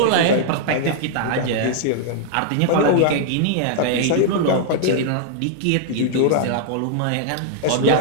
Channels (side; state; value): both; different; correlation -0.01